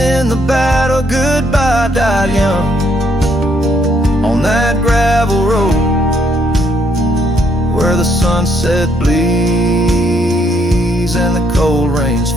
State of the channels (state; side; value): normal; both; correlation 0.71